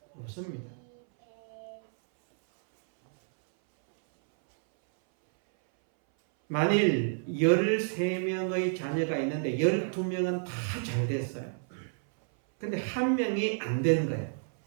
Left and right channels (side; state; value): left; silent; 58 dB below the other